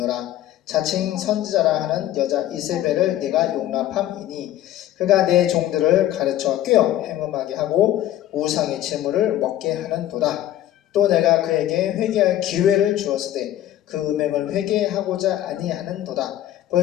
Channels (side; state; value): right; quieter; 13.0 dB